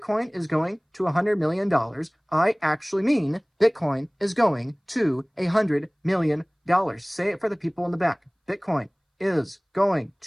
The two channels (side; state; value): both; identical; correlation 1.00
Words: is going to $100 million, I actually mean Bitcoin is going to $100 million. Say it for the people in the back. Bitcoin is going